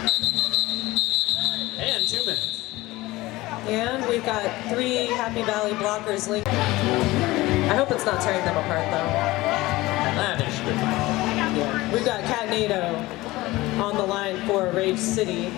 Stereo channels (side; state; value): right; quieter; 19.2 dB